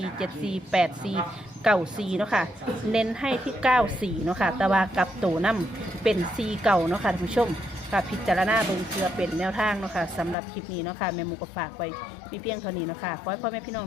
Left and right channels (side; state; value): right; drops out; at 10.4 s